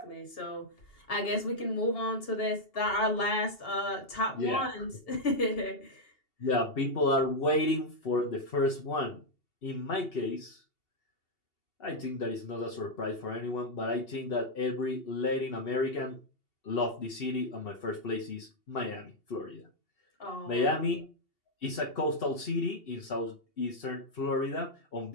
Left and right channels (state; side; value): late; right; 2.8 ms